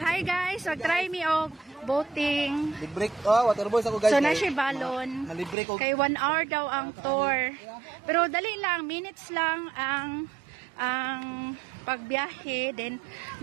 guys, mag-try me og boating. Libre waterboys ako guys. So na siya balon. Nalibre ko. Kay 1 hour daw ang tour. Pero dali lang, minutes lang ang pagbiyahe. Then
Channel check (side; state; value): left; drops out; at 5.6 s